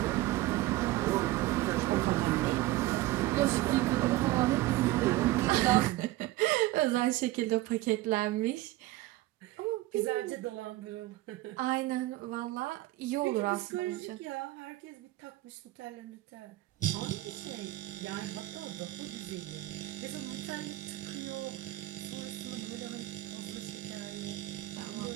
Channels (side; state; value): left; quieter; 17.5 dB